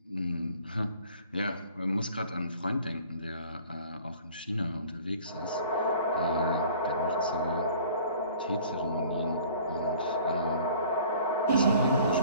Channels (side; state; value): both; inverted; correlation -0.50